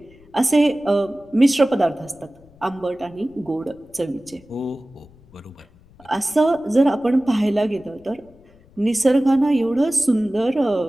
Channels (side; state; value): left; noise; rumble, 27 dB below the sound